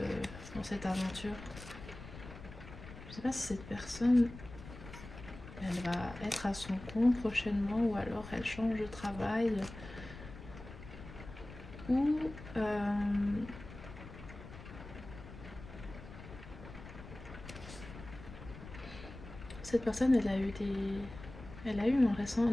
dans cette aventure. Je ne sais pas si cette personne, elle va être à son compte prochainement, ou alors elle change de travail, ou cette personne, elle a eu un récent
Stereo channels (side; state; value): left; noise; rumble, 14 dB below the sound